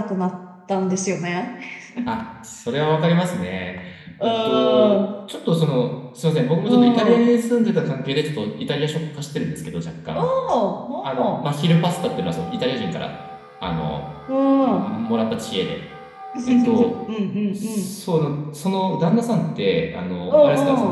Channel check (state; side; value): identical; both; correlation 1.00